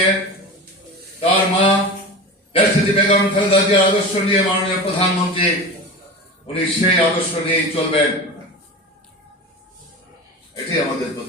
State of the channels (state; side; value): normal; both; correlation 0.30